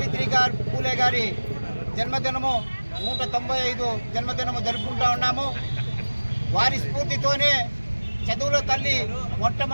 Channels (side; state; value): both; inverted; correlation -1.00